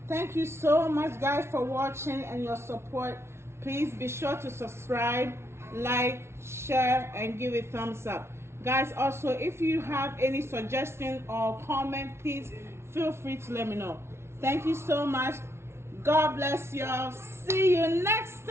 Thank you so much guys for watching and your support. Please be sure to subscribe, like, share, and give it thumbs up. Guys, also if you have any suggestion or comment, please feel free to let me know. Thank you so much. God bless y'all. See you next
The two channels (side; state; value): left; late; 0.12 ms